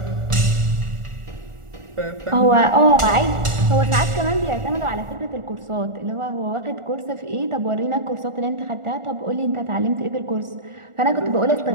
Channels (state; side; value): late; left; 1.4 ms